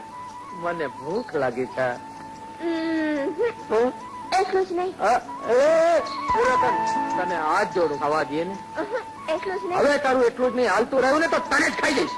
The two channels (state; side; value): identical; both; correlation 1.00